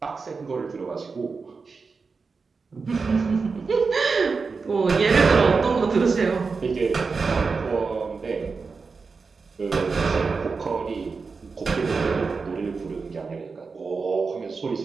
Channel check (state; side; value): quieter; left; 4.7 dB